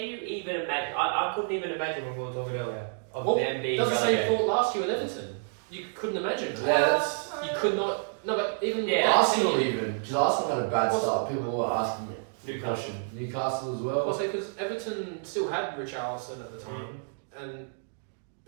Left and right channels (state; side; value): silent; left; 58 dB below the other